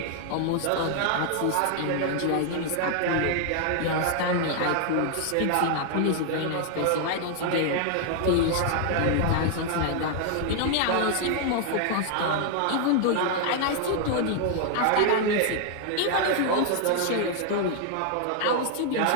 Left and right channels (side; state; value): both; different; correlation 0.00